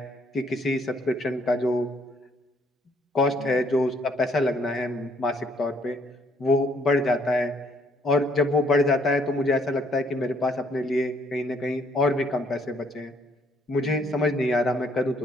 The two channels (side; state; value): both; normal; correlation 0.66